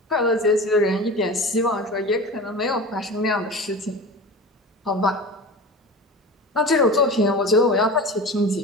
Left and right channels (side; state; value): both; normal; correlation 0.33